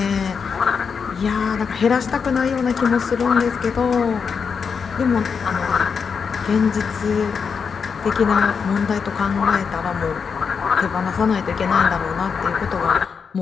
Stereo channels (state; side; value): quieter; right; 6.0 dB